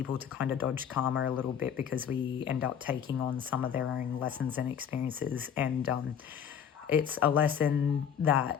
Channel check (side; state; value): right; quieter; 8.3 dB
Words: to kind of dodge karma a little bit because we end up taking on some of their own lessons and experiences. And it's a lesson